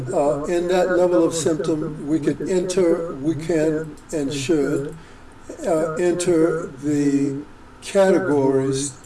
in that level of symptom, we can and should enter the categories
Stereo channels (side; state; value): both; identical; correlation 1.00